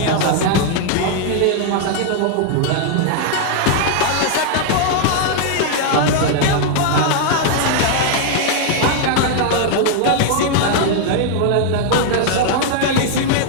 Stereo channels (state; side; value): different; both; correlation 0.00